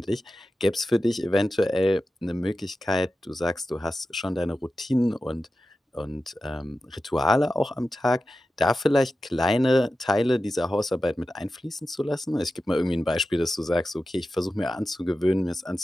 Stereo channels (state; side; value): normal; both; correlation 0.93